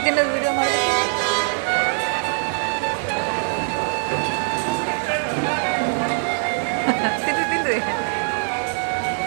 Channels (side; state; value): left; silent; 64 dB below the other